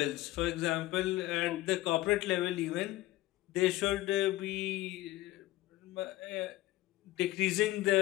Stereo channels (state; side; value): quieter; right; 16.8 dB